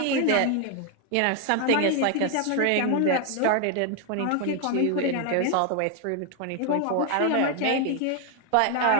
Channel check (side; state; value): both; different; correlation 0.00